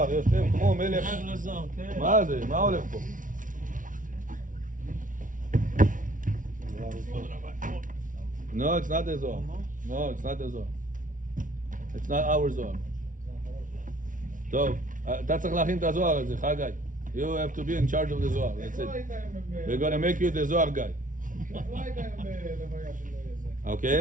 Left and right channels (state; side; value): late; left; 0.38 ms